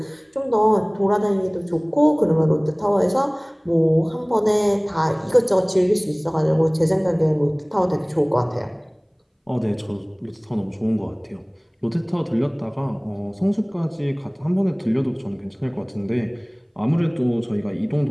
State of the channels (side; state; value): both; identical; correlation 1.00